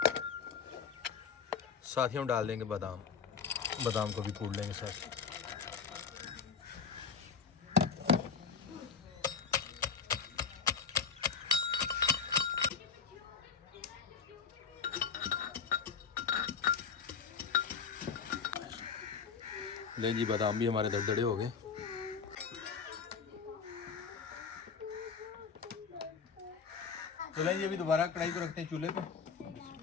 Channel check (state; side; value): quieter; right; 6.0 dB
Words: साथ ही हम डाल देंगे बादाम। बादाम को भी कूट लेंगे साथ। लें जी, बादाम भी हमारे दरदरे हो गए। तो लें जी, अभी दोबारा कढ़ाई को रखते हैं चूल्हे पे।